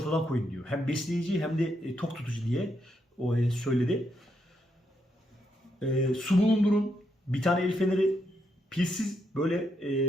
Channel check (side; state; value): both; normal; correlation 0.79